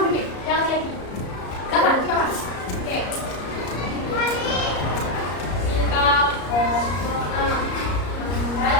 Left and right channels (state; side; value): late; right; 34 ms